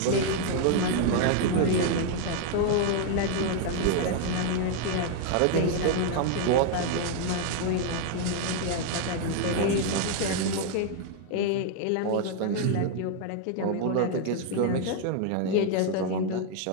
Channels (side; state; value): both; different; correlation 0.00